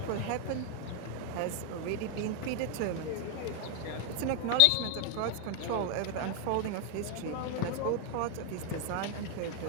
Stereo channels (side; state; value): both; different; correlation 0.01